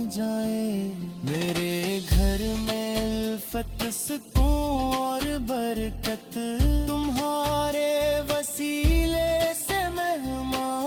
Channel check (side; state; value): both; identical; correlation 1.00